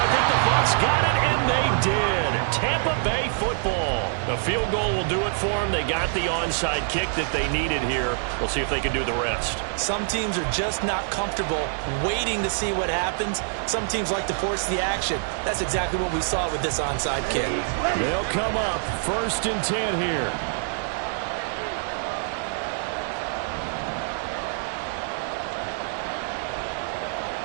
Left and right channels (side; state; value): left; silent; 61 dB below the other